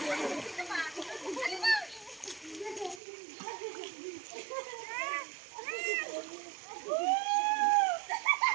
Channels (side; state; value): left; drops out; at 3.0 s